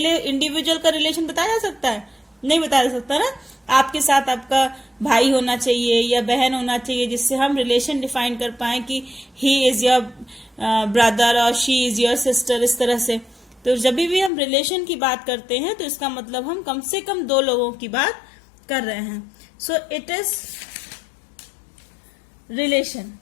इंडिविजुअल का रिलेशन बताया जा सकता है? नहीं बताया जा सकता ना। आपके साथ आपका भाई होना चाहिए या बहन होना चाहिए जिससे हम रिलेशन डिफाइन कर पाए कि ही इज योर ब्रदर और शी इज योर सिस्टर, इस तरह से। तो जब भी हम रिलेशन की बात करते हैं तो इसका मतलब हम कम से कम 2 लोगों की बात कर रहे हैं। So it is relation.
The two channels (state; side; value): drops out; right; at 14.3 s